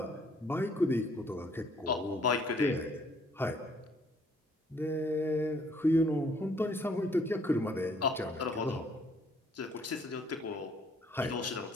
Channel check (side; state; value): both; normal; correlation 0.63